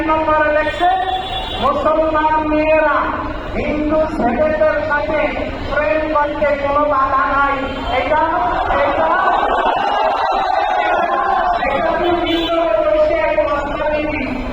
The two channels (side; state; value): both; identical; correlation 1.00